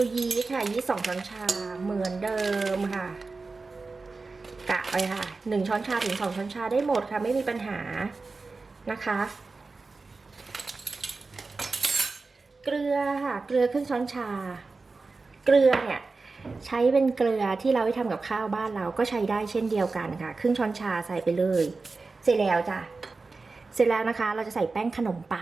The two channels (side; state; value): left; quieter; 3.9 dB